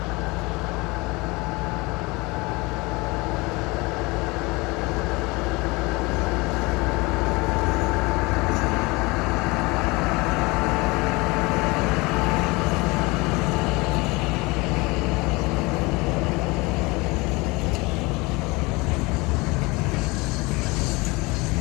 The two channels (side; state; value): right; quieter; 24.5 dB